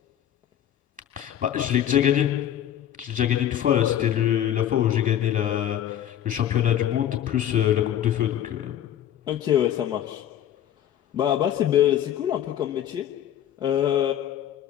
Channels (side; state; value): right; quieter; 10.8 dB